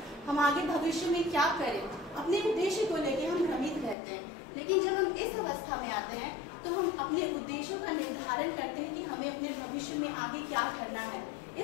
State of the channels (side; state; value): right; drops out; at 4.0 s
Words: हम आगे भविष्य में क्या करें। अपने उद्देश्य को लेकर हम भ्रमित रहते हैं। लेकिन जब हम इस अवस्था में आते हैं तो हम अपने उद्देश्यों का निर्धारण करते हैं कि हमें अपने भविष्य में आगे क्या करना है।